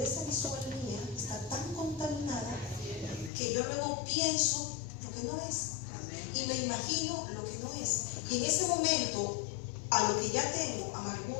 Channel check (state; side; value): drops out; right; at 3.3 s